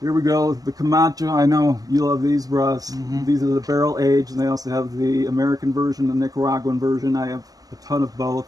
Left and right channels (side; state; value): left; late; 0.17 ms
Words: we go. The Camacho. I know you love these, Russ. Mm-hmm. These are the barrel aged, and they also have the American version, the Nicaraguan version. I have a ton of both